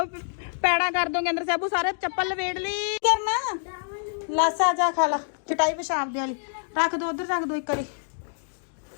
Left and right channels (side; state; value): right; silent; digital silence